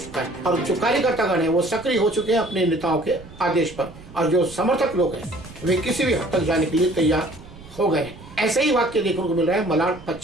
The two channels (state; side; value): noise; right; rumble, 19 dB below the sound